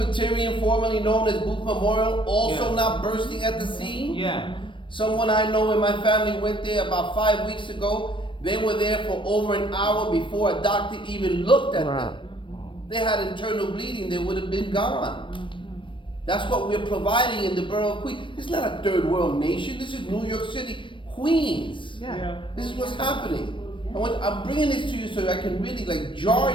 formerly known as Booth Memorial, also not bursting at the seams? Yeah. Someone I know in my family went there about 5 weeks ago. They were there for over an hour before a doctor even looked at them. They had internal bleeding, they would have been gone. That's what we're providing in the borough of Queens. This is not a third world nation. This is New York City, Queens. This is what's happening. I'm bringing this to you so I can really jar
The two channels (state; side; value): late; right; 0.24 ms